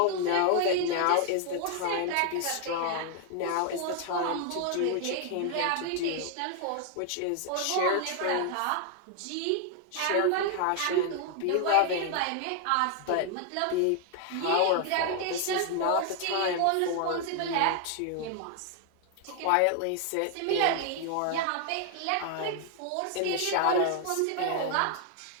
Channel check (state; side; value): different; both; correlation 0.00